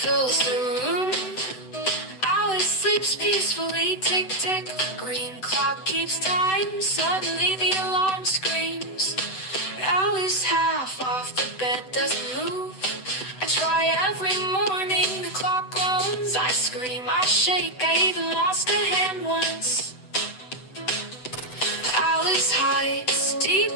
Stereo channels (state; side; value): late; right; 7.9 ms